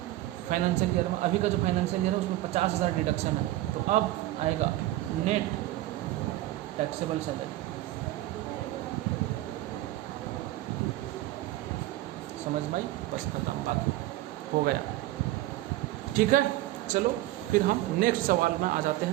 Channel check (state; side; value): quieter; left; 15.9 dB